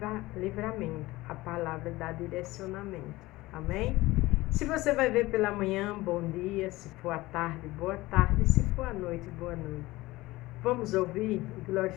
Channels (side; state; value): right; quieter; 19.2 dB